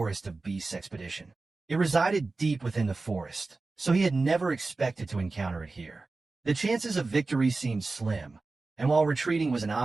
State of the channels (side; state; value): left; quieter; 3.6 dB